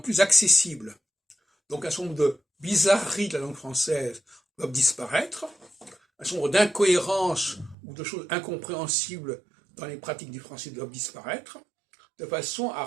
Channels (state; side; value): drops out; left; at 7.8 s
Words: accessible. Donc un certain nombre de bizarreries de la langue française doivent disparaître, un certain nombre d'incohérences ou de choses incompréhensibles dans les pratiques du français doivent disparaître, de façon à